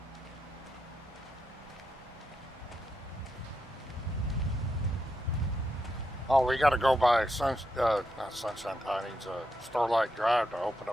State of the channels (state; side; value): normal; both; correlation 0.84